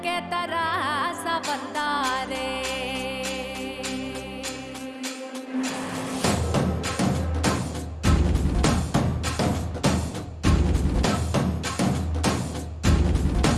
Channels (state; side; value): identical; both; correlation 1.00